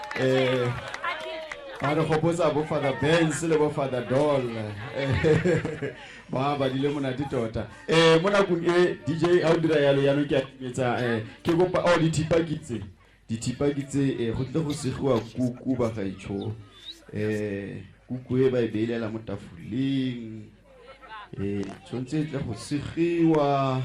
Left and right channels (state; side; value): identical; both; correlation 1.00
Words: Ba re gopotsa bo Father Benz le bo Father Doll. Ba badile monate tota. Mo nakong e DJ a o dira yalo ya no ke ametsa ke gopa o dithipa kitse go tle go segiwa kuku bagaetsho. Kuku e ba e beilela mo tafoleng tshwanetse tle go segiwa